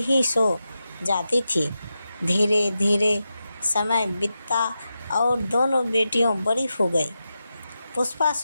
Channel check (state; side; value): inverted; both; correlation -0.90